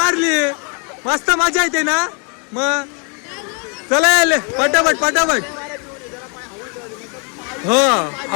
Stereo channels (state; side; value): quieter; right; 37.1 dB